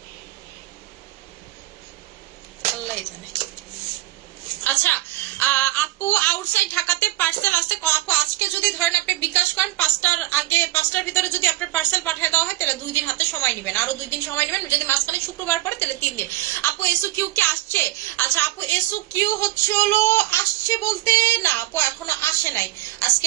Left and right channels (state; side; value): quieter; left; 17.0 dB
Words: আল্লাহ জানে। আচ্ছা আপু, আউটসাইড ঢাকাতে পার্সেল আসছে। আপু আজকে যদি ধরেন আপনি বিকাশ করেন, 5টার ভিতরে যদি আপনার পার্সেল পাঠিয়ে দেওয়া হয়, তাহলে 2 দিন হাতে সময় নেবেন, আরো 2 দিন সময় নেবেন। যদি মাঝখানে শুক্রবার পরে, তাহলে 3 দিন। আপু এসু কিউ কি আসছে? আচ্ছা আপু, এসু কিউ হচ্ছে হলো আসছে বলতে না আপু, এখনো আসে নাই, আজকে